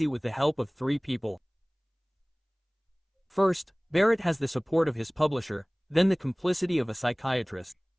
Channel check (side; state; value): both; identical; correlation 1.00